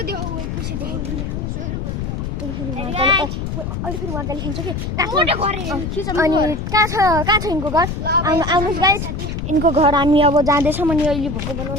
अहिले फेरि उहाँले खिच्छ कि अनि कहाँ छ यिनको घर आउनुहोस् गाइस यिनको घर हामी अब जाँदैछौँ अनि अहिले भोको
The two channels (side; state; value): left; noise; rumble, 4 dB below the sound